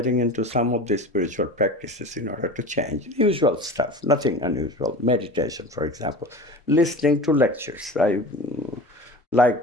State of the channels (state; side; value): normal; both; correlation 0.34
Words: into some of the spiritual practices in order to change. Usual stuff, nothing unusual. Meditation, for example. Listening to lectures. I